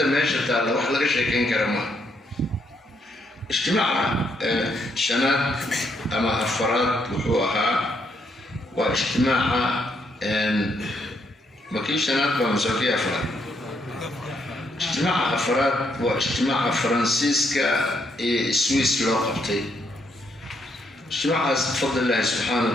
meesha taalla wax laga sheekayn kara maaha. اجتماع شنات أما أفراد وحوها واجتماع مكي شنات بمساكي أفراد اجتماع أفراد واجتماع فرانسيسكا سويس لوقبتي اجتماع بفضل الله سبحانه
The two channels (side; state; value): both; normal; correlation 0.75